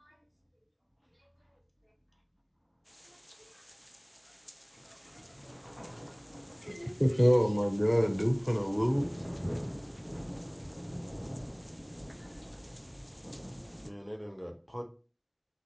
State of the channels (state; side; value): identical; both; correlation 1.00